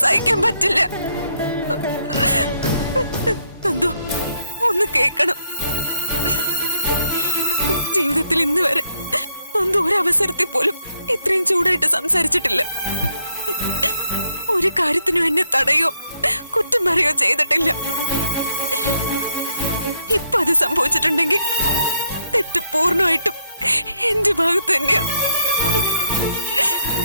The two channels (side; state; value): both; inverted; correlation -0.74